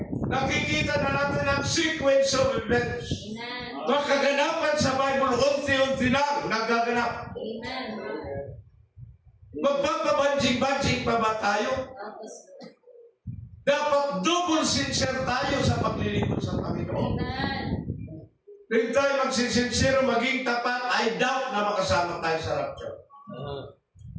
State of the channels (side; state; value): both; identical; correlation 1.00